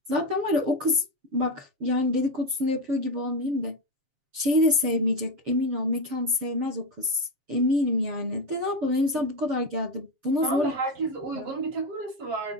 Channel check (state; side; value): late; left; 7.3 ms